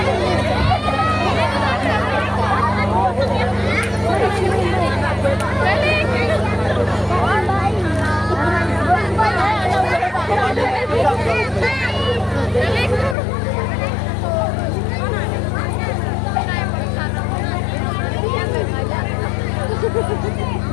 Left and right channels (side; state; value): right; drops out; at 13.2 s